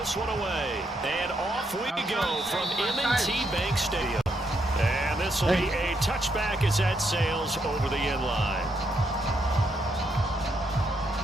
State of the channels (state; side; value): normal; both; correlation 0.77